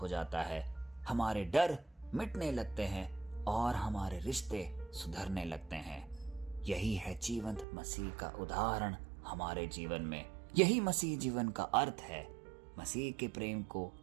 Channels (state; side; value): drops out; left; at 7.7 s